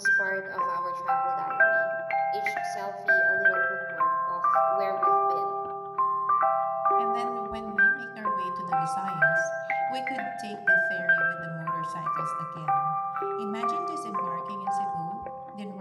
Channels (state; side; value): identical; both; correlation 1.00